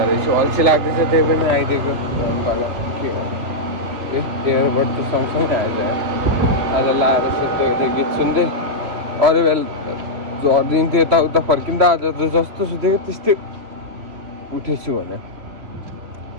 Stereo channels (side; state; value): left; late; 3.2 ms